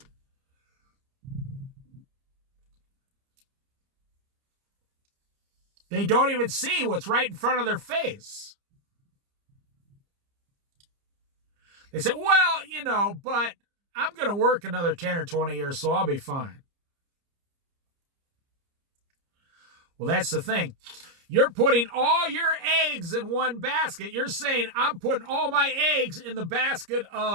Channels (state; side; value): late; left; 30 ms